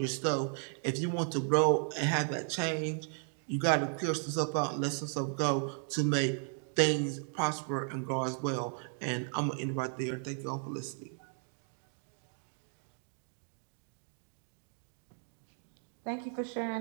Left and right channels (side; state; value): left; silent; 54 dB below the other